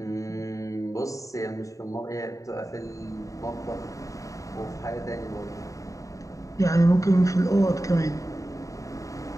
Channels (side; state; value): right; late; 0.16 ms